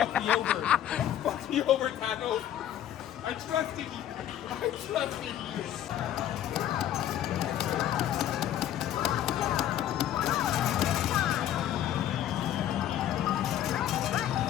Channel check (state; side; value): quieter; right; 11.4 dB